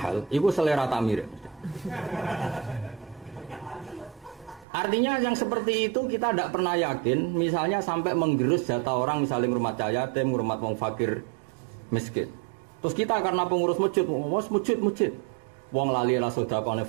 itu selera tak mirip. Artinya yang seperti itu kita tidak pernah yakin. Misalnya sampai menggerus jatah orang, misalnya ngurmat yatim, ngurmat wong fakir miskin. Terus kita karena pengurus masjid, masjid, wong lali lah sedekah oleh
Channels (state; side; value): drops out; left; at 4.7 s